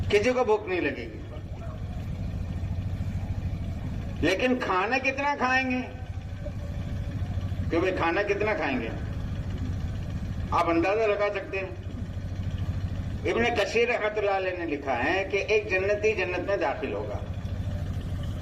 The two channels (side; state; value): both; identical; correlation 1.00